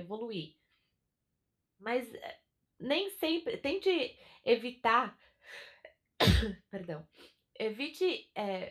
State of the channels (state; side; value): identical; both; correlation 1.00